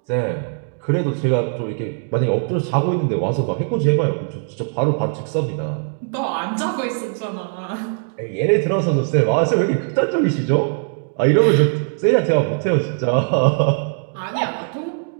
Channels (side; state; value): left; silent; digital silence